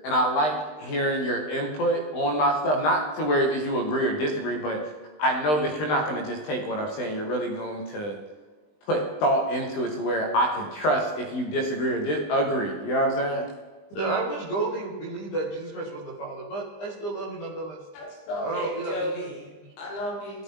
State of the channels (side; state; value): right; late; 20 ms